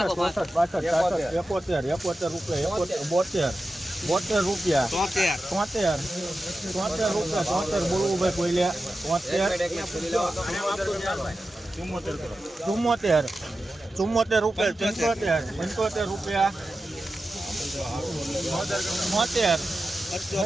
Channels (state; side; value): normal; both; correlation 0.92